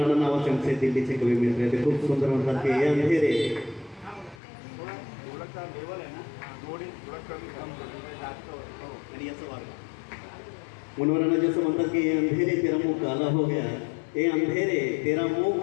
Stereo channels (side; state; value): right; drops out; at 4.4 s